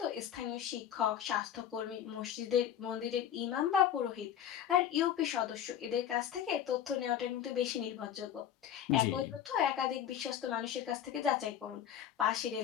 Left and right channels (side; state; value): right; quieter; 9.9 dB